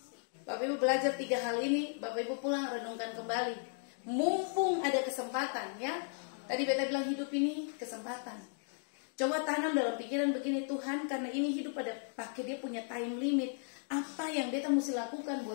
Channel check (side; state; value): right; silent; 54 dB below the other